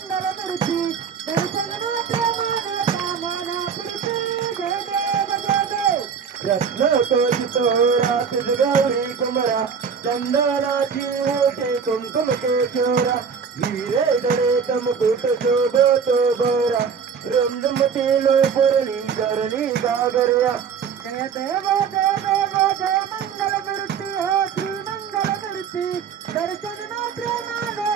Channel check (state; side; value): quieter; left; 6.5 dB